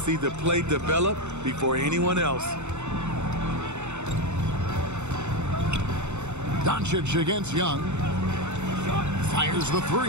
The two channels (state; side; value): late; left; 0.83 ms